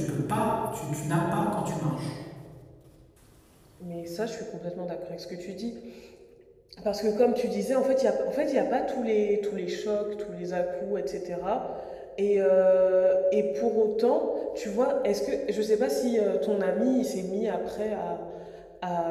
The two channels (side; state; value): both; identical; correlation 1.00